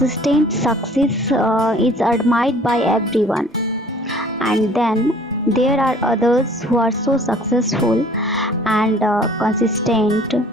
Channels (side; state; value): both; normal; correlation 0.53